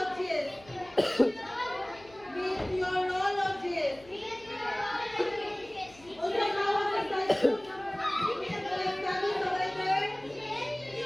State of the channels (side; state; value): left; noise; hum, 24 dB below the sound